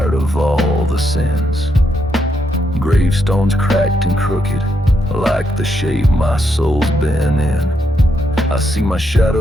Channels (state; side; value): normal; both; correlation 0.79